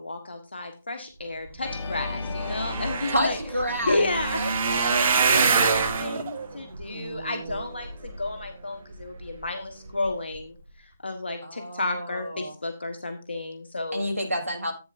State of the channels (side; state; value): both; inverted; correlation -0.70